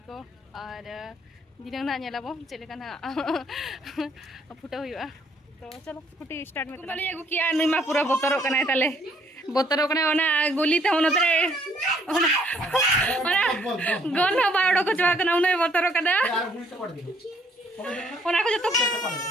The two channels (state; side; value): normal; both; correlation 0.65